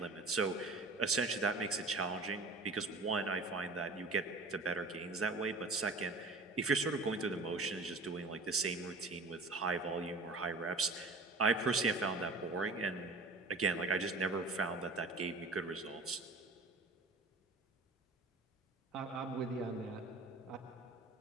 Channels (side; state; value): left; quieter; 3.3 dB